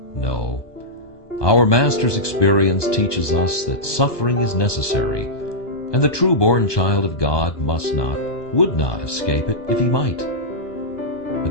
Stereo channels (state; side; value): late; right; 1.2 ms